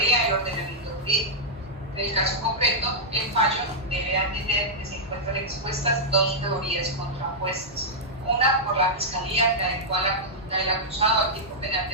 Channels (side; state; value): both; normal; correlation -0.08